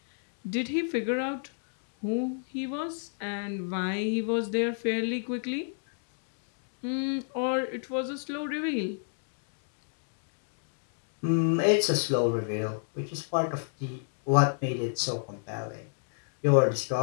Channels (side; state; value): right; silent; digital silence